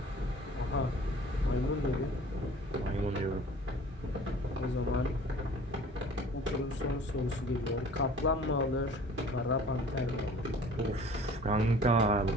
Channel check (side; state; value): both; normal; correlation 0.47